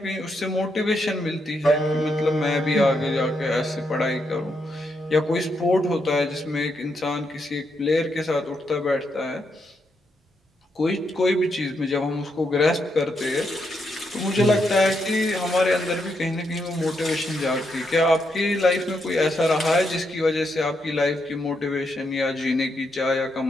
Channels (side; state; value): both; normal; correlation 0.80